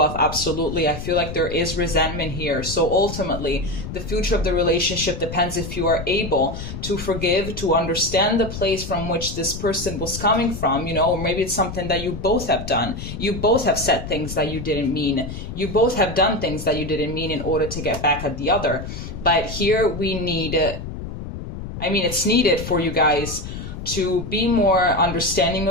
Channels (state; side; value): noise; left; rumble, 8 dB below the sound